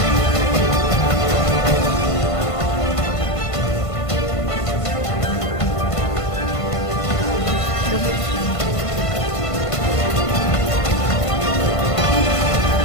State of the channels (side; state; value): right; late; 1.5 ms